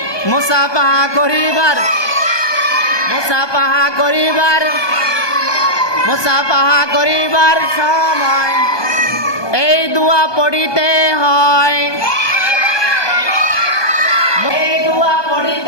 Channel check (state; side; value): late; right; 1.2 ms